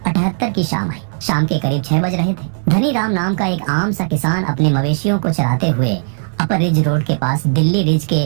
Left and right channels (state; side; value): silent; left; digital silence